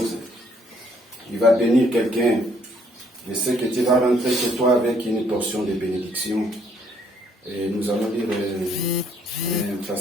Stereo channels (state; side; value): normal; both; correlation 0.66